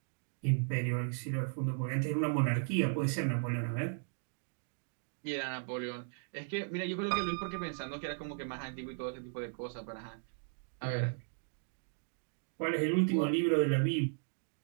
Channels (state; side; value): silent; left; digital silence